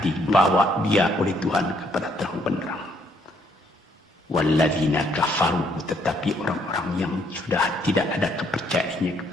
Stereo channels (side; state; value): both; normal; correlation 0.69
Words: dibawa dia oleh Tuhan kepada terang benderang. Walladzina kafaru, tetapi orang-orang yang sudah tidak ada kepercayaannya